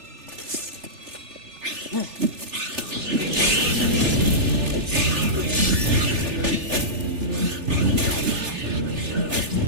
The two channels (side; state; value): left; late; 3.4 ms